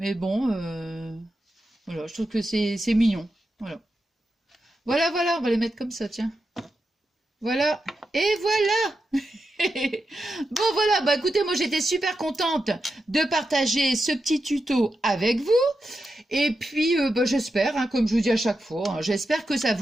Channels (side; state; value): both; normal; correlation 0.88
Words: bon, voilà. Je trouve que c'est mignon. Voilà. Voilà, voilà. On va les mettre comme ça, tiens. Voilà. Et voilà. Bon, voilà. Bah, écoutez, moi, j'étais super contente de partager ce petit tuto avec vous. Et puis, bah, j'espère, hein, comme je vous dis à chaque fois, hein, j'espère que ça